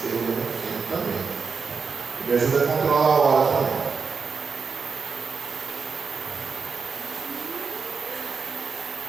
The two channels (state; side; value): quieter; left; 5.3 dB